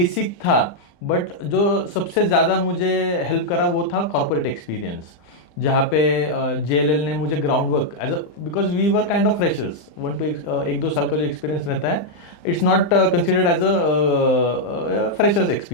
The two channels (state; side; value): late; right; 35 ms